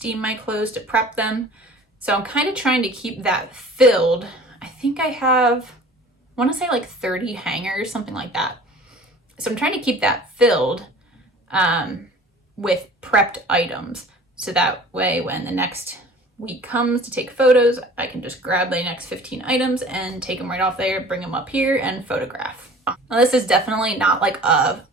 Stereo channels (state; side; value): normal; both; correlation 0.45